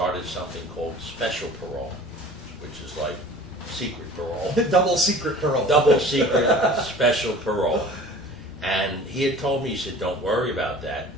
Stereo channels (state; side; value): normal; both; correlation 0.44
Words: something called special parole, which is like secret parole. Double secret parole. Double secret special parole. And he had told me, he said, "Don't worry about that.